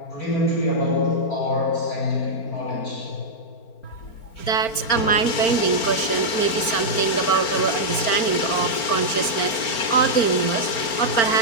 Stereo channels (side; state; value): right; late; 4.4 ms